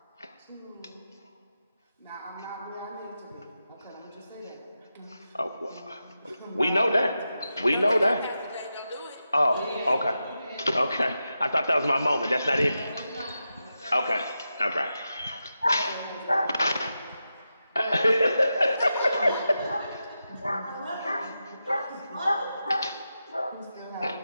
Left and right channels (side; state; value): both; inverted; correlation -0.89